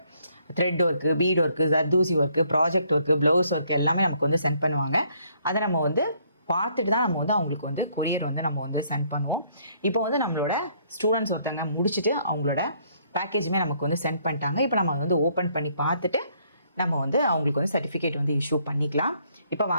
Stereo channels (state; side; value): inverted; both; correlation -0.67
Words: Thread work, beat work, zardozi work, project work, blouse work எல்லாமே நமக்கு வந்து சென்ட் பண்ணுவாங்க. அதை நம்ம வந்து பார்த்துட்டு தான் நம்ம வந்து அவங்களுக்கு வந்து கொரியர் வந்து நம்ம வந்து சென்ட் பண்ணுவோம். இப்போ வந்து நம்மளோட ஸ்டூடெண்ட்ஸ் ஒருத்தவங்க முடிச்சுட்டு அவங்களோட பேக்கேஜுமே நமக்கு வந்து சென்ட் பண்ணிட்டாங்க. இப்போ நம்ம வந்து ஓப்பன் பண்ணி பார்த்துட்டு நம்ம வந்து அவங்களுக்கு வந்து சர்டிஃபிகேட் வந்து இஷ்யூ பண்ணிக்கலாம். இப்போ